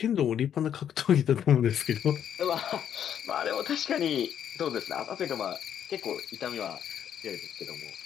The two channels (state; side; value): quieter; right; 9.3 dB